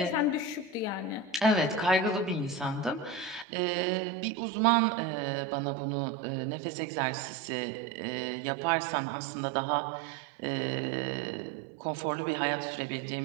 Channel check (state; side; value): drops out; left; at 3.5 s